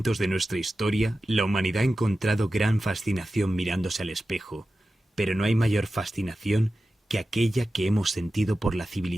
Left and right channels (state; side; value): normal; both; correlation 0.94